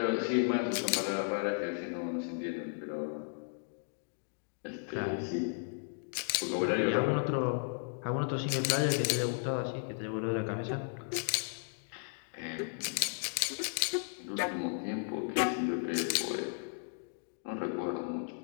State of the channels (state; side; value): silent; right; digital silence